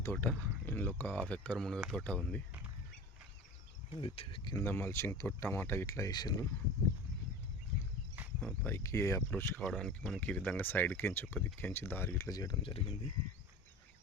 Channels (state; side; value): normal; both; correlation 0.35